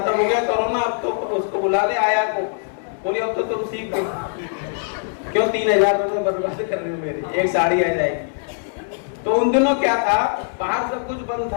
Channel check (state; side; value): silent; right; digital silence